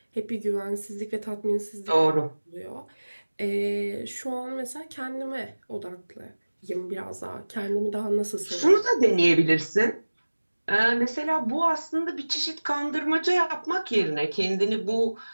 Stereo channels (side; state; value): both; inverted; correlation -1.00